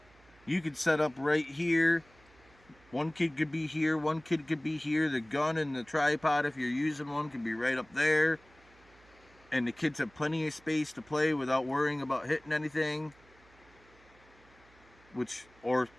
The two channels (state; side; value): noise; right; hum, 28 dB below the sound